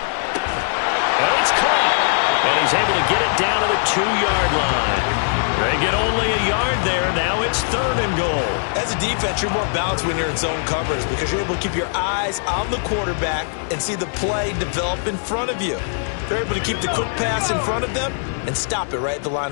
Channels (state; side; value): silent; right; digital silence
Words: And it's caught. And he's able to get it down to the 2-yard line. They get only a yard there. Now it's 3rd and goal. As a defense, you're more balanced when you're in zone coverage because you're able to keep your eyes on the quarterback and see the play develop in front of you. They're able to keep the quick pass in front of them and stop it right at the line